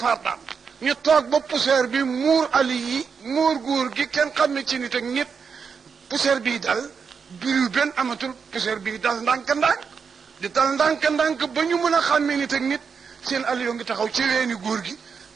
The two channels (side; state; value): left; quieter; 5.9 dB